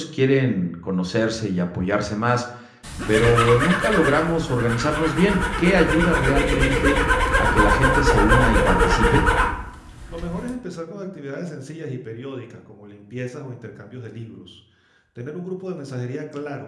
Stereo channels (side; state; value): both; identical; correlation 1.00